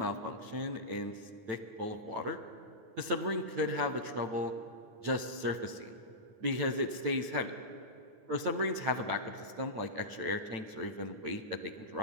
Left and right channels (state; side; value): late; left; 9.0 ms